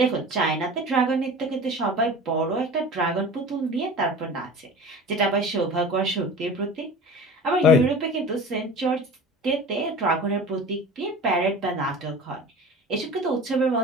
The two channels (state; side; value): normal; both; correlation 0.37